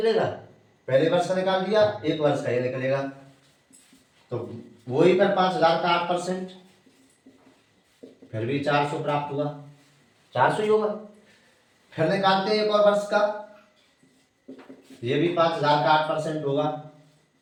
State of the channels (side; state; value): both; identical; correlation 1.00